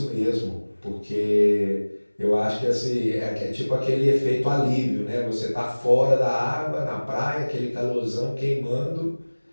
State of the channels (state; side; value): inverted; both; correlation -1.00